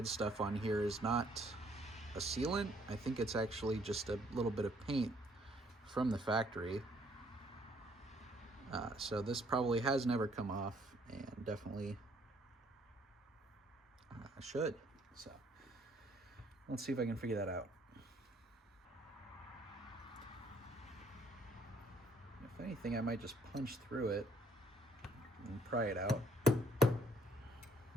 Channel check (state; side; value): normal; both; correlation 0.65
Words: stuff on here is not a sealant. I think it's actually just a little bit of paint from the factory. So this probably has never come off, and definitely should. So let's see if I can figure that out. If anything, I might just punch through it. and pry it out.